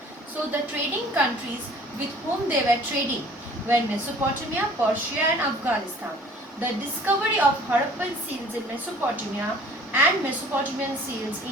So the trading countries with whom they were trading were Mesopotamia, Persia and Afghanistan. The discovery of Harappan seals in Mesopotamia and Mesopotamian seals in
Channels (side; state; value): both; normal; correlation 0.51